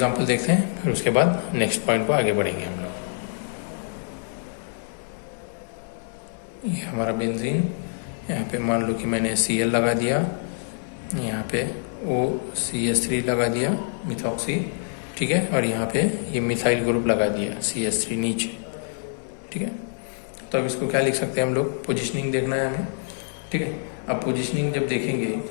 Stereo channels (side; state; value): right; silent; digital silence